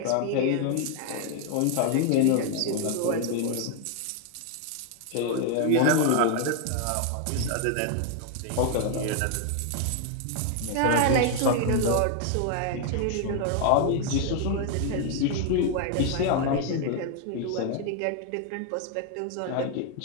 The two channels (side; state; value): both; different; correlation 0.00